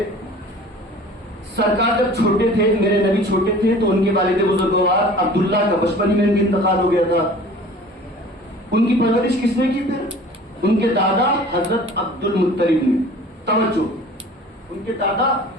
سرکار جب چھوٹے تھے، میرے نبی چھوٹے تھے، تو ان کے والد بزرگوار عبداللہ کا بچپن ہی میں ان کا انتقال ہو گیا تھا۔ ان کی پرورش کس نے کی؟ پھر ان کے دادا حضرت عبد المطلب نے۔ توجہ، ان کے دادا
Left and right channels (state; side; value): normal; both; correlation 0.45